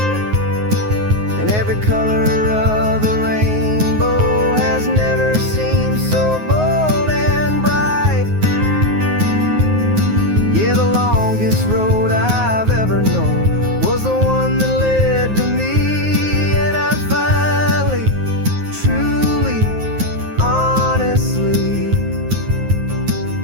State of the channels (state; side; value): late; left; 9.5 ms